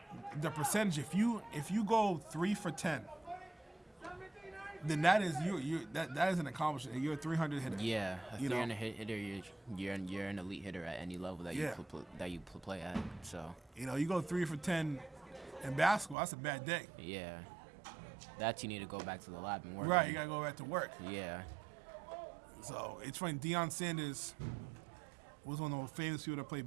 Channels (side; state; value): left; drops out; at 16.2 s